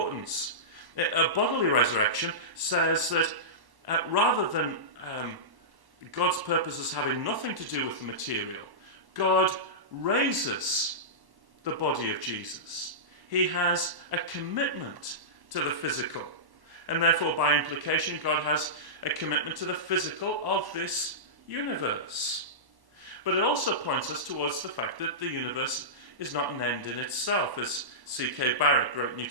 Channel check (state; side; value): late; left; 1.1 ms